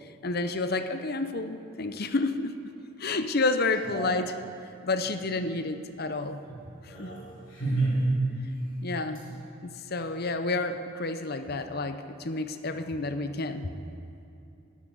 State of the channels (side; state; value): both; normal; correlation 0.30